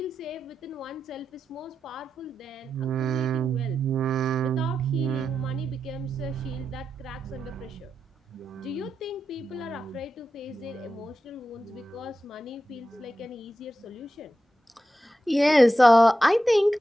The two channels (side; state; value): both; normal; correlation 0.89